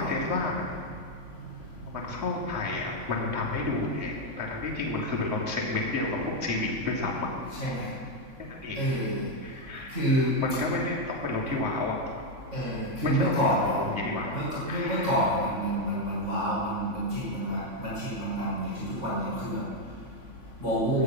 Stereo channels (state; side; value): late; left; 3.5 ms